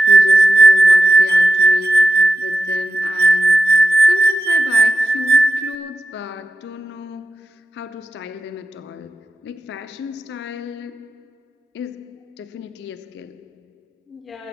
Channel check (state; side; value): normal; both; correlation 0.91